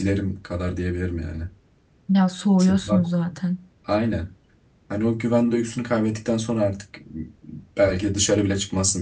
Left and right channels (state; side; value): identical; both; correlation 1.00